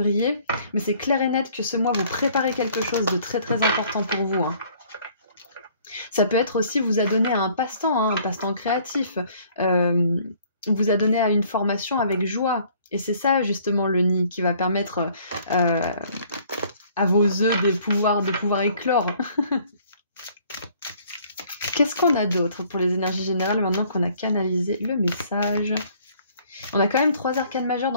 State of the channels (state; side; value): inverted; both; correlation -0.59